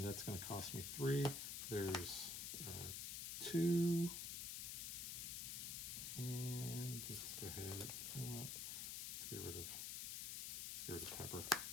that's going to cost me 3. There's 2, and let's go ahead. You know what? Let's get rid of Pepper.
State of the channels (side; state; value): left; noise; hiss, 3 dB below the sound